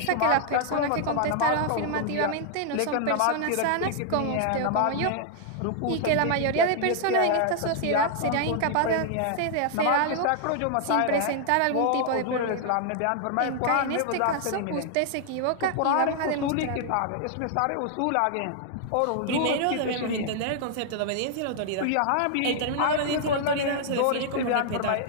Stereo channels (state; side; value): different; both; correlation -0.01